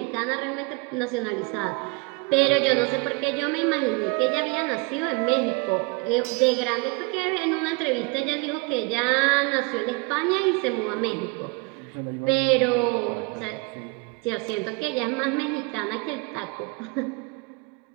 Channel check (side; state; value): left; quieter; 27.8 dB